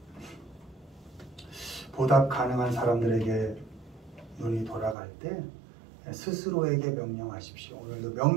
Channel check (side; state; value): left; drops out; at 5.0 s